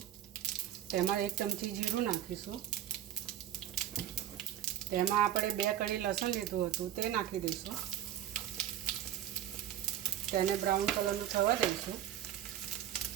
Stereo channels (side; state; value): left; quieter; 11.4 dB